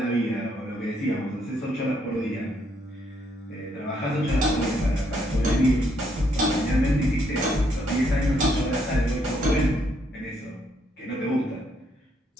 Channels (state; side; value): normal; both; correlation 0.73